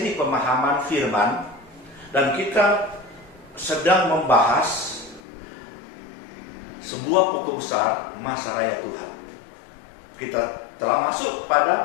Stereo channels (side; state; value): right; drops out; at 5.2 s